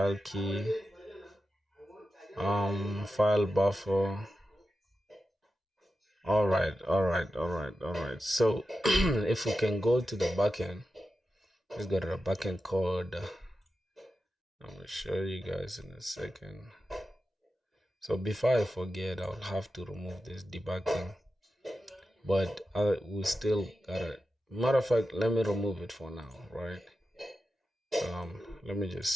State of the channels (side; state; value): both; normal; correlation 0.91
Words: key, file buffer. Alright. So if we can go to the backend, let's go to the backend code. I'm gonna show you guys in a second. So before I forget, I'll have to remove this debugging, but we still gotta. Matter of fact, let me remove it for now, right? Let me